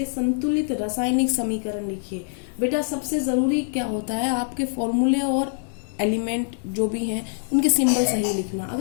संतुलित रासायनिक समीकरण लिखिए। बेटा सबसे जरूरी क्या होता है, आपके फॉर्मूले और एलिमेंट जो भी हैं उनके सिंबल सही लिखना।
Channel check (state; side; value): silent; right; digital silence